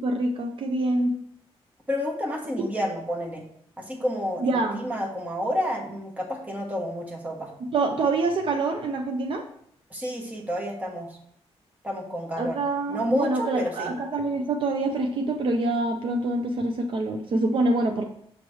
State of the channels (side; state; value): both; normal; correlation 0.66